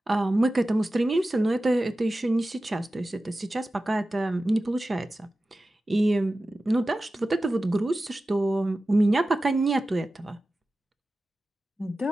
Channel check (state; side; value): normal; both; correlation 0.95